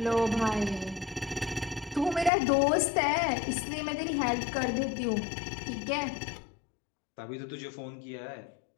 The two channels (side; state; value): right; drops out; at 2.3 s